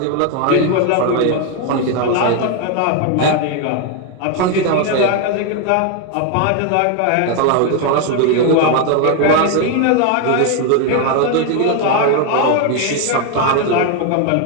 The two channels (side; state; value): both; different; correlation 0.01